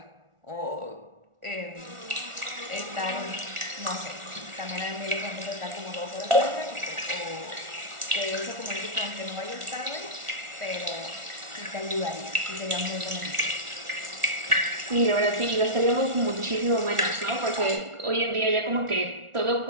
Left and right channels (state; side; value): late; left; 1.4 ms